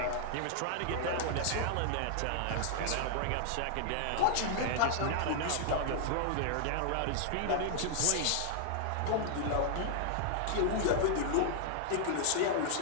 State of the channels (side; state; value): both; different; correlation 0.00